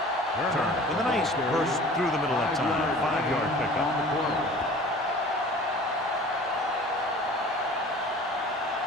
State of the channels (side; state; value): both; normal; correlation 0.44